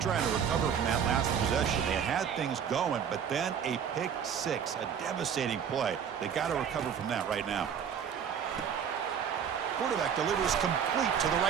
to recover from that last possession. They had things going, but then a pick 6, a devastating play. They got to recover from that right now. Quarterback delivers complete to the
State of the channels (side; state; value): left; quieter; 7.8 dB